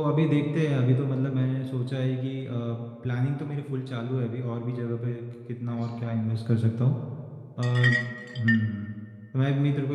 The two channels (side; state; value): both; identical; correlation 1.00